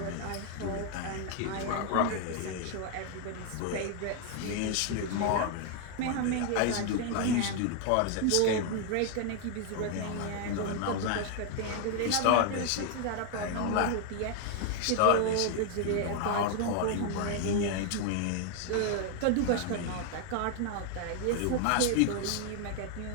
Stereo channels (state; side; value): different; both; correlation 0.00